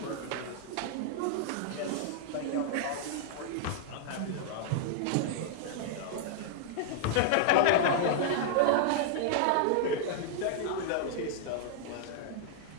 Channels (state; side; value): different; both; correlation -0.01